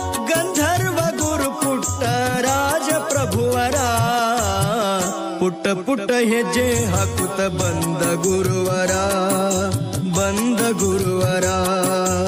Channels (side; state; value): both; identical; correlation 1.00